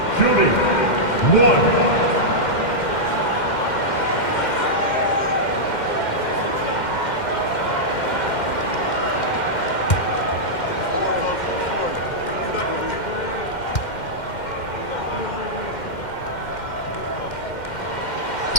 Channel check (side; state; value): right; late; 2.1 ms